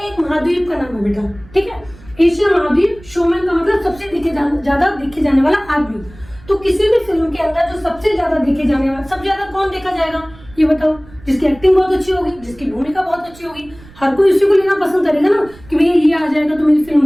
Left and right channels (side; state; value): right; noise; rumble, 22 dB below the sound